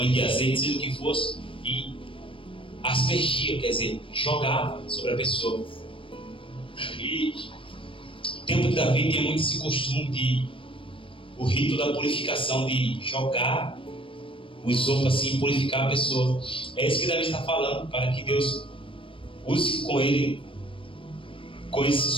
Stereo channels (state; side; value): late; right; 0.25 ms